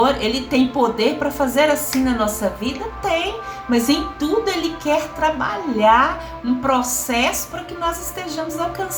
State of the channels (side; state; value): both; identical; correlation 1.00